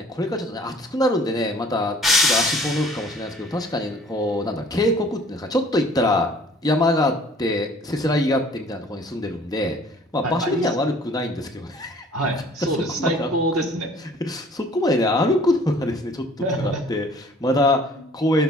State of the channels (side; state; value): both; normal; correlation 0.53